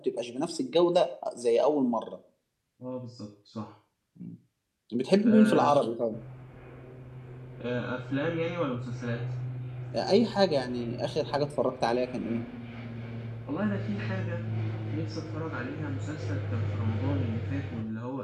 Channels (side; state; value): both; identical; correlation 1.00